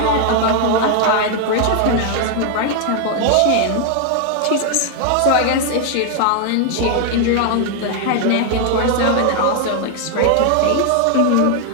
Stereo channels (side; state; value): both; different; correlation 0.00